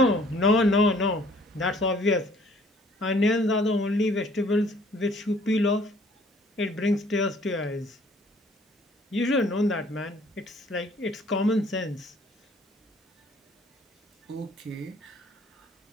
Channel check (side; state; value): both; normal; correlation 0.58